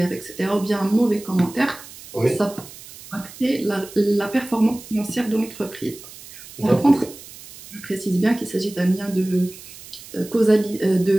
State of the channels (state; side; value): noise; right; hiss, 17 dB below the sound